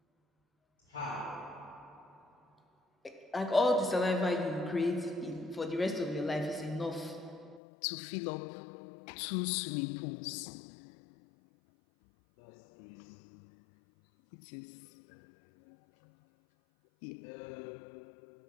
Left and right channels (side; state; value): right; drops out; at 7.6 s